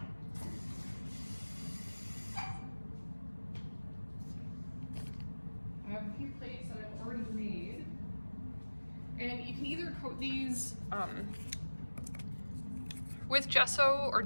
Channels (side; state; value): both; inverted; correlation -1.00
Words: I have a few plates that I've already made. And you can either coat these with gesso or